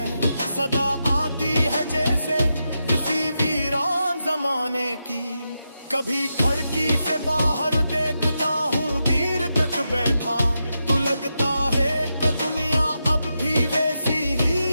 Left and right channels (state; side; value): inverted; both; correlation -0.87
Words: सदा आती है जैसे किसी वीरान जमाने की। कभी खिड़की से बाहर देखता हूँ देर तक बैठा, तो लगता है कि दुनिया अब भी वैसी